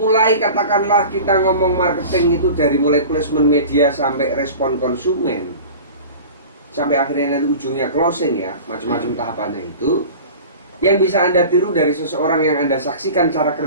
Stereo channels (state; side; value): inverted; both; correlation -0.37